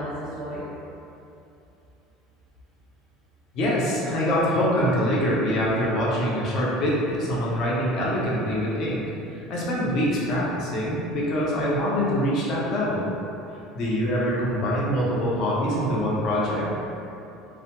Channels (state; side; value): normal; both; correlation 0.42